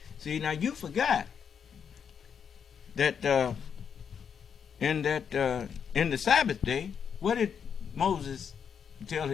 See, now you forgot that in the Sabbath day, what did Moses tell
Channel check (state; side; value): quieter; right; 7.2 dB